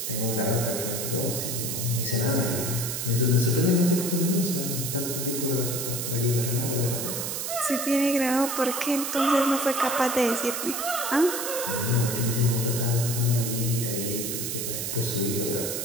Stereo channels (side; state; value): right; noise; hiss, 3 dB below the sound